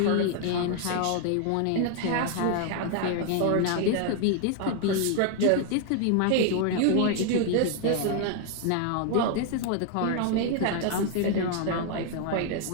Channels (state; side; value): different; both; correlation 0.00